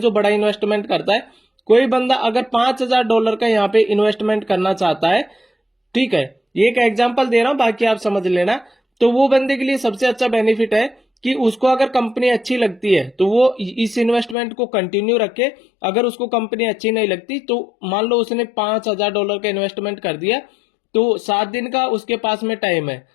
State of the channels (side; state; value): right; drops out; at 14.4 s